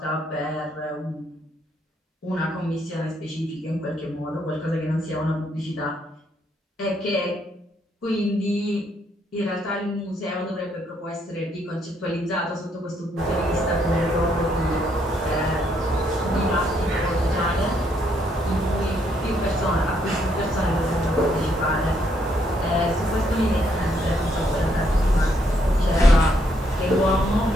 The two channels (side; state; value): both; normal; correlation 0.73